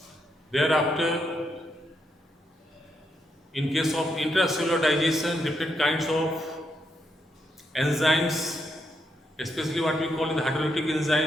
Thereafter, in case of intracellular digestion, different kinds of enzymes, especially what we call the hydrolytic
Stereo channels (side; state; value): both; normal; correlation 0.80